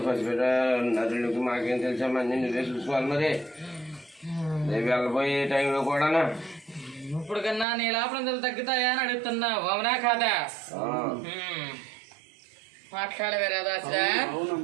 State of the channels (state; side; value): drops out; left; at 7.7 s